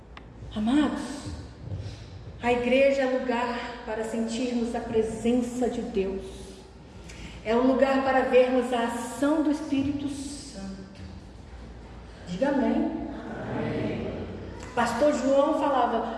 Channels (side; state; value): both; identical; correlation 1.00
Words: Amados, a igreja é lugar para sentirmos a presença de Deus. É um lugar para vermos a ação do Espírito Santo. Diga amém. Amém. Pastor João